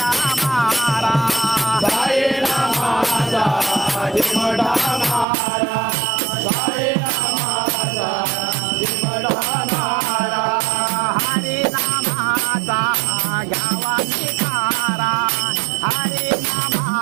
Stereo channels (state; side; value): drops out; left; at 5.2 s